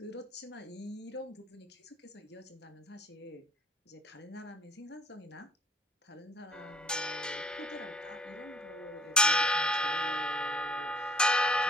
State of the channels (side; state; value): both; normal; correlation 0.59